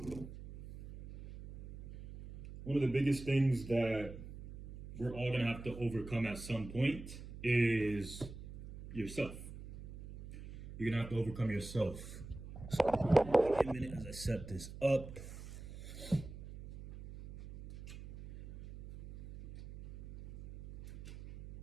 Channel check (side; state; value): right; noise; hum, 13 dB below the sound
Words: One of the biggest things that we're all going to have to overcome at some point is yourself. You're going to have to overcome yourself. So, wait a minute as I set this up.